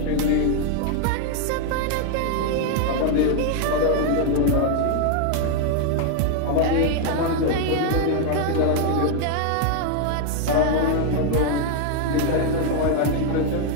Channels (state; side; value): different; both; correlation 0.00